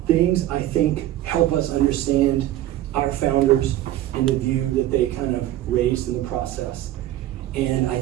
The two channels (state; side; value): quieter; left; 13.9 dB